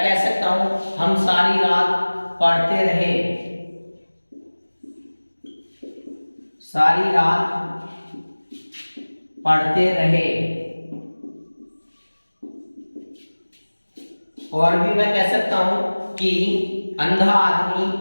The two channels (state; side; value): inverted; both; correlation -1.00